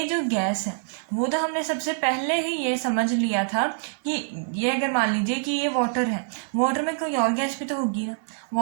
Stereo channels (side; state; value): left; silent; 61 dB below the other